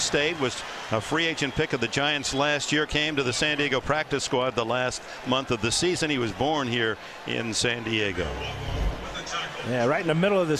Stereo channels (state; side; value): identical; both; correlation 1.00